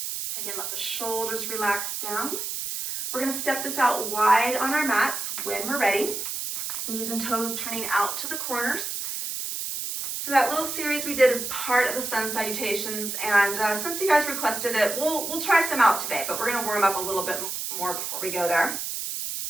Again, let the shoulders relax down. We're going to step this out wide on our mats when we're ready. Knees and toes turning out to the corners. So that little series we did is part of the Sun Salutations, and since you guys requested it, we'll try some out today, but we're going to warm up a little bit more before we go there.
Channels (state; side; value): noise; right; hiss, 4 dB below the sound